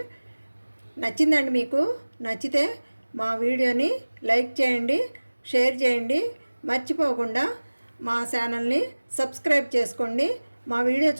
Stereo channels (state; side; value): inverted; both; correlation -1.00